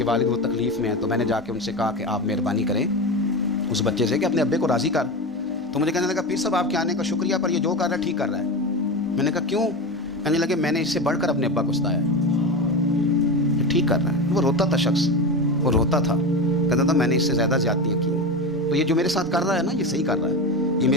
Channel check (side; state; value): both; normal; correlation 0.22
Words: والد وہ تکلیف میں ہیں. تو میں نے جا کے ان سے کہا کہ آپ مہربانی کریں اس بچے سے کہ اپنے ابے کو راضی کر. تو مجھے کہنے لگا پیر صاحب آپ کے آنے کا شکریہ, پر یہ جو کر رہا ہے ٹھیک کر رہا ہے. میں نے کہا کیوں؟ کہنے لگے میں نے اس سے بڑھ کر اپنے ابا کو ستایا ہے، یہ ٹھیک کر رہا ہے۔ وہ روتا تھا شخص، وہ روتا تھا، کہتا تھا میں نے اس سے زیادہ زیادتیاں کی ہیں، تو یہ جو میرے ساتھ کر رہا ہے نا یہ صحیح کر رہا ہے، یہ